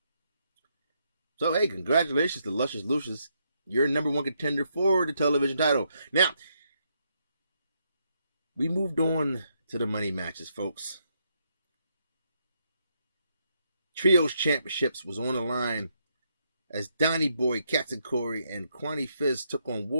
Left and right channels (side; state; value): both; inverted; correlation -0.77